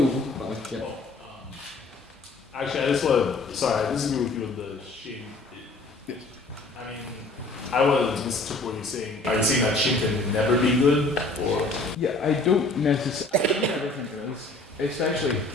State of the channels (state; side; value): quieter; right; 3.1 dB